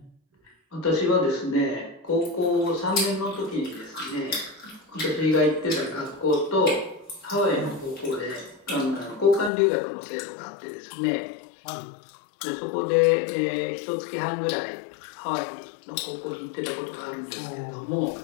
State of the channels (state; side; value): drops out; right; at 9.5 s